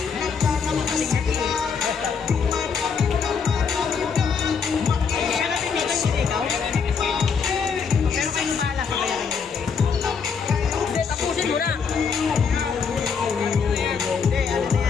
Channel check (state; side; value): quieter; right; 6.0 dB